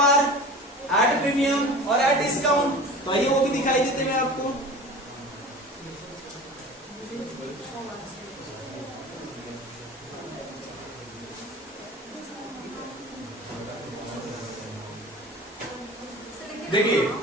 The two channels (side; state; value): both; normal; correlation 0.37